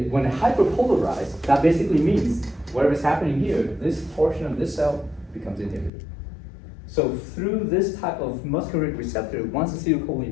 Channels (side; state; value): right; drops out; at 5.9 s